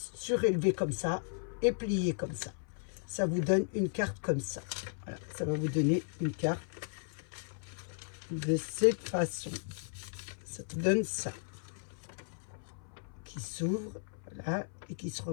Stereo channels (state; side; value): silent; right; 54 dB below the other